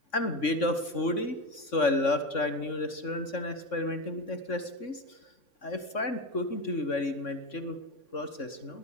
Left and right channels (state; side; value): late; right; 3.6 ms